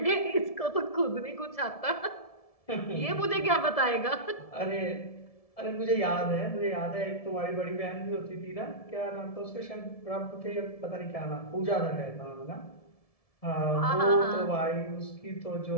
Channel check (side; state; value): right; late; 1.7 ms